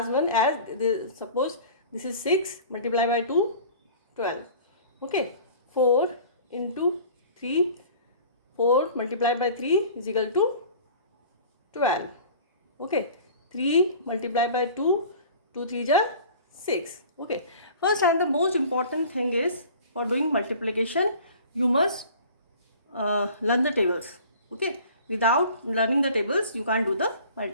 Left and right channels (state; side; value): inverted; both; correlation -0.44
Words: 1 as suppose this is 6 multiply by 2, 12. Okay, 4 into 3, 4 multiplied by 3 is equal to 12. Okay, 3 multiplied by 2, 2 3 are 6. Okay, first and the most important thing is, for doing multiplication you must learn the tables. Okay, without learning the tables you can't do the